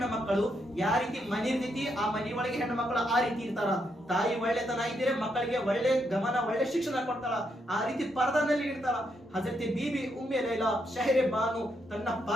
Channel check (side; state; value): both; normal; correlation 0.78